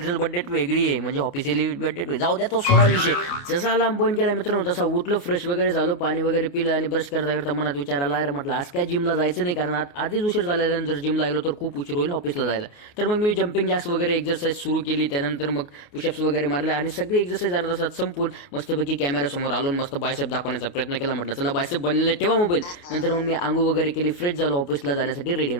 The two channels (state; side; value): late; right; 29 ms